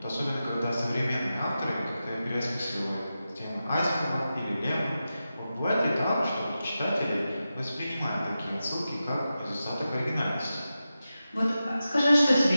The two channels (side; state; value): both; inverted; correlation -0.92